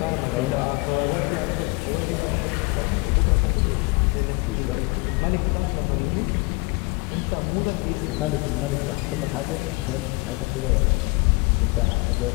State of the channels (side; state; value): right; quieter; 26.7 dB